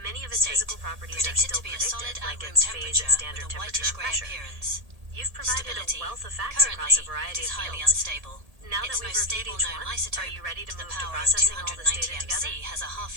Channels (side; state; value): left; late; 1.8 ms